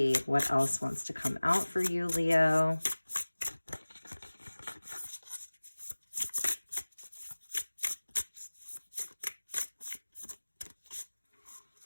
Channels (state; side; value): inverted; both; correlation -1.00